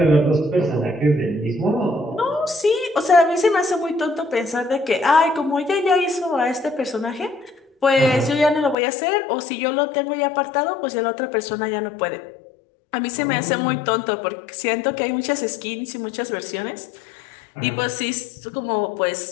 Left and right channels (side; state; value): right; drops out; at 8.8 s